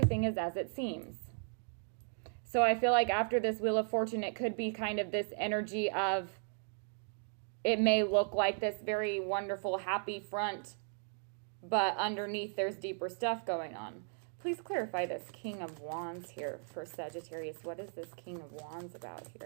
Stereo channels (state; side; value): silent; left; 54 dB below the other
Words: is as it seems. So I feel like after this Wheel of Fortune, it could be kind of this energy of, it may look like this very wonderful, happy front, but underneath there's deeper stuff going on. Please clarify this King of Wands here for Sagittarius. What is this King of Wands about